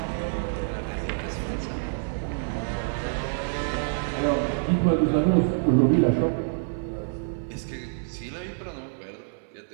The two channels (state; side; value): silent; left; 60 dB below the other